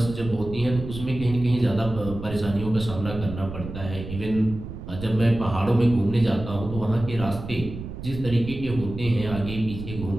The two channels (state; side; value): noise; right; rumble, 10 dB below the sound